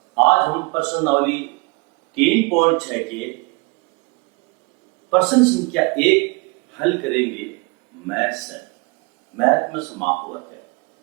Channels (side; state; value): left; quieter; 27.7 dB